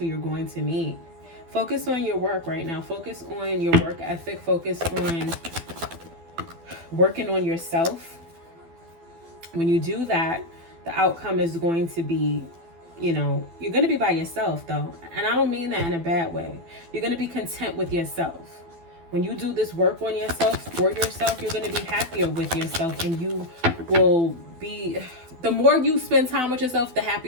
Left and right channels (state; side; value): late; left; 12 ms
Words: you're going to meet. Focus on your work right now. Focus on your work ethic. Focus on working on yourself. When you do that, the outcome is going to be, you're going to be by yourself, though. And I don't mean that in a bad way. You're going to be content with yourself. When you do this work on yourself, for yourself, you're going to be happier with yourself. And you will be, the more you spend time with yourself, the